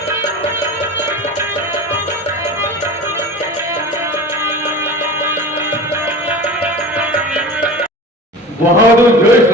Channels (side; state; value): both; normal; correlation 0.35